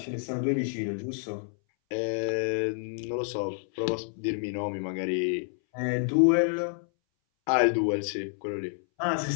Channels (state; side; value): silent; right; 59 dB below the other